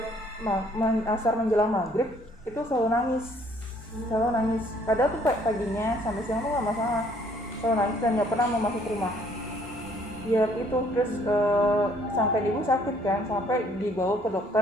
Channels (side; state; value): both; normal; correlation 0.62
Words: asar menjelang maghrib itu selalu nangis. Padahal tuh paginya sampai siang tuh nggak masalah, selalu nangis dan nggak pernah mau masuk rumah. Ya itu terus sampai ibu sakit kan, sampai dibawa ke